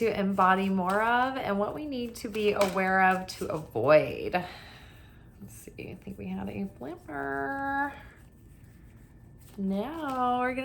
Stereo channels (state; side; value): identical; both; correlation 1.00